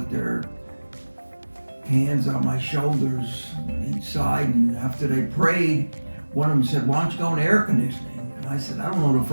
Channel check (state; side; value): inverted; both; correlation -1.00